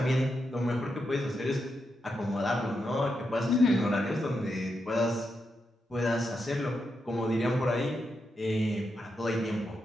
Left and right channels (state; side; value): normal; both; correlation 0.85